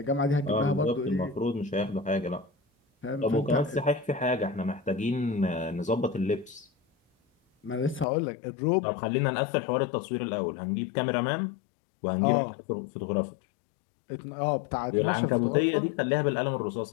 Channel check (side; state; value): right; drops out; at 8.1 s